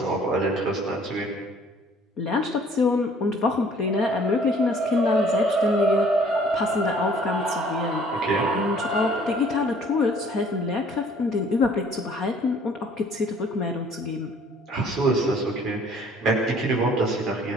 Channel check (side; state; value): both; normal; correlation 0.56